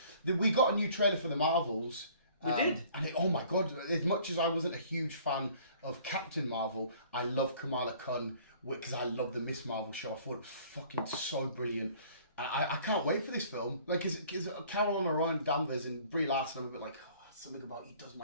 We got a new trailer for the Marvels. We did. And oh my god, as much as I wasn't a huge fan of Captain Marvel, I love Kamala Khan because I love the Miss Marvel show. I thought it was fucking so brilliant. I can't wait for this film. Like, because Carol and Orion Danvers and Brie Larson, I'm a bit like, oh, something about he does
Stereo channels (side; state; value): both; inverted; correlation -0.54